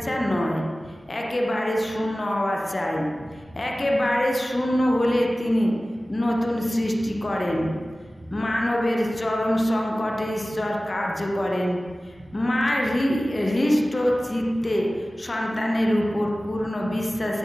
নয়, একেবারে শূন্য হওয়া চাই। একেবারে শূন্য হলে তিনি নতুন সৃষ্টি করেন। মানবের চরম সংকটে ঈশ্বর কার্য করেন। মা হৃষ্ট চিত্তে সন্তানের উপর পূর্ণ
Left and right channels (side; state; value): both; normal; correlation 0.97